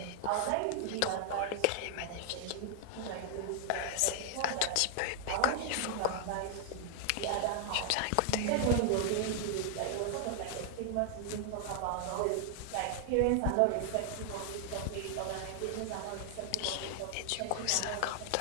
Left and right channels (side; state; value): both; different; correlation 0.00